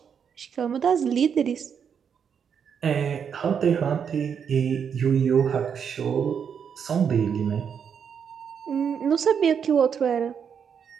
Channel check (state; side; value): quieter; left; 7.3 dB